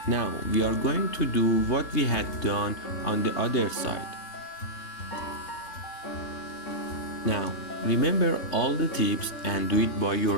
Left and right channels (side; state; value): right; late; 3.5 ms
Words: Now we are going to do what we had done on the other side. Now remember all the tips and do it by